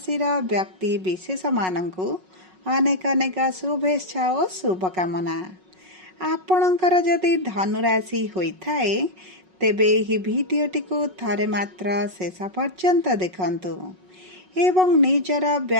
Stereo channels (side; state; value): left; late; 5.4 ms